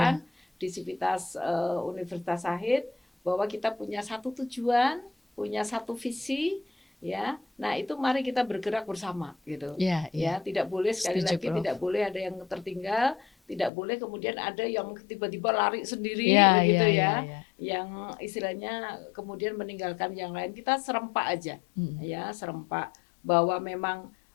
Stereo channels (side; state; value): right; drops out; at 13.7 s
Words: di Civitas Universitas Sahid, bahwa kita punya satu tujuan, punya satu visi ya. Nah itu mari kita bergerak bersama gitu. Iya, Ya tidak boleh, sekali Setuju, lagi Prof. tidak boleh ada yang tertinggal, tidak boleh kemudian ada yang tiba-tiba lari sendiri Iya, begitu iya, ya. iya, iya. Yang istilahnya kemudian meninggalkan yang lain. Kita serempak aja ya, serempak, bahwa memang